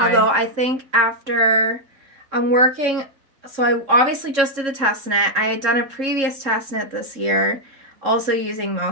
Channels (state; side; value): late; left; 3.7 ms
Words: I think after I'm working, so I obviously just did the test knit. I had done a previous test knit this year, also using